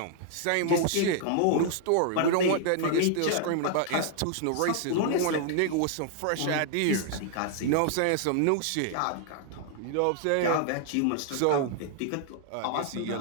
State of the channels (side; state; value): both; different; correlation -0.01